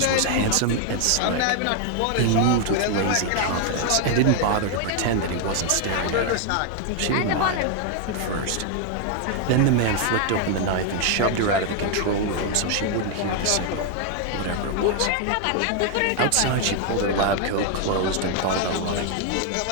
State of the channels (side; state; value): both; different; correlation 0.00